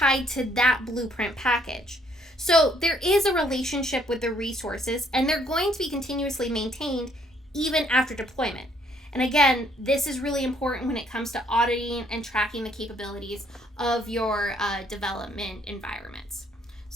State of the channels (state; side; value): normal; both; correlation 0.66